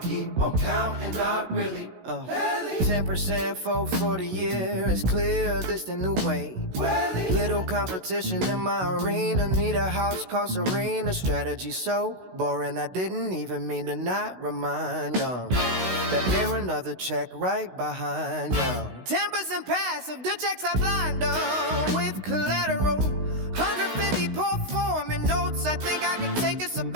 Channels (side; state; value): left; late; 16 ms